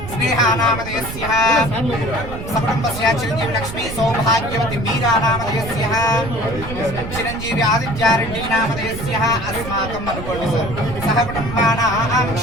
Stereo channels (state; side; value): noise; right; rumble, 9 dB below the sound